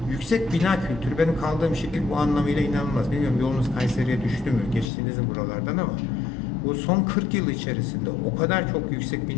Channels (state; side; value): drops out; right; at 4.9 s